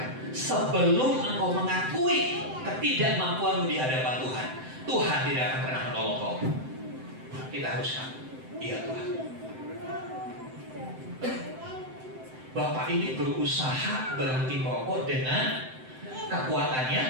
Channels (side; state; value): left; late; 7.8 ms